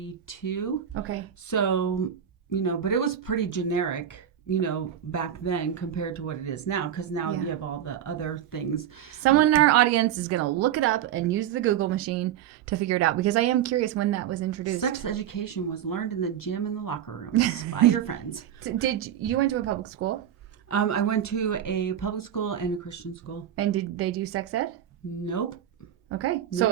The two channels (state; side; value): quieter; left; 10.1 dB